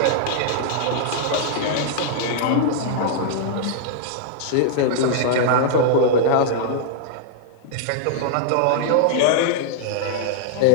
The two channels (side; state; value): both; different; correlation -0.01